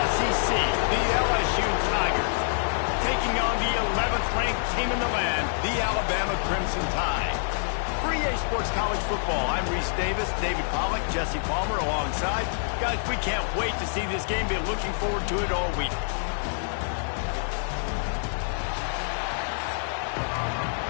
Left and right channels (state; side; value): silent; right; 60 dB below the other